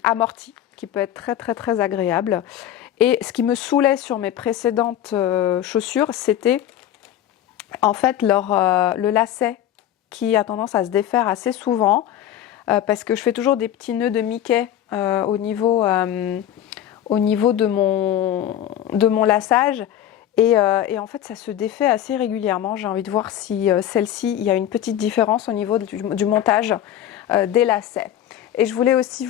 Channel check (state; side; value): quieter; right; 11.3 dB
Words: amorti, qui peut être très très très agréable. Et ce qui me saoulait sur mes précédentes chaussures, c'était en fait le lacet qui a tendance à se défaire assez souvent parce que je fais toujours des petits nœuds de Mickey au niveau de mon laçage. Et en fait, ça se défait assez régulièrement. J'ai envie de voir si celle-ci, il y a une petite différence au niveau du montage des lacets. Et je voulais aussi